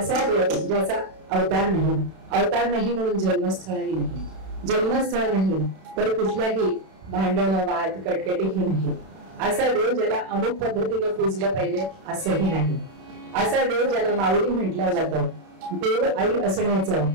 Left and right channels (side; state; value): left; late; 31 ms